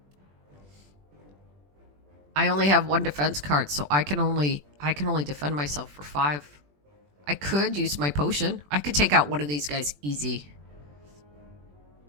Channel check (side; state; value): left; late; 20 ms